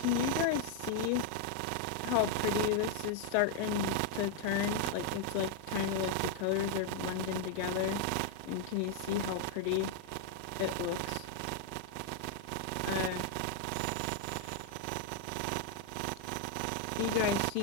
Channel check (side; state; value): both; different; correlation 0.00